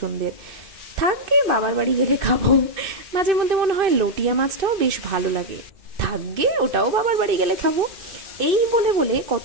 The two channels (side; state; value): left; late; 2.6 ms